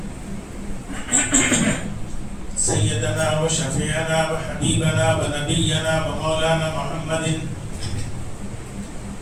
سيدنا وشفيعنا وحبيبنا ونبينا ومولانا محمد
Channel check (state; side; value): identical; both; correlation 1.00